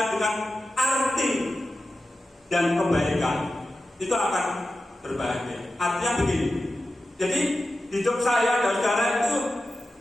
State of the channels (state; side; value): normal; both; correlation 0.92